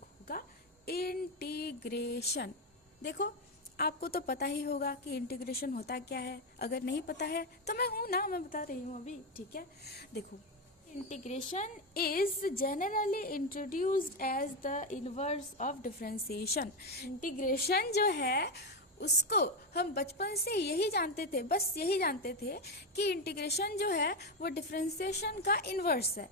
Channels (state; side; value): normal; both; correlation 0.10